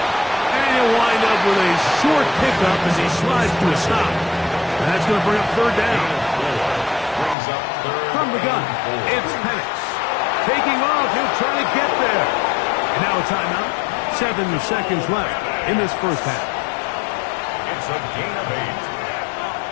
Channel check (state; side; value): drops out; right; at 7.4 s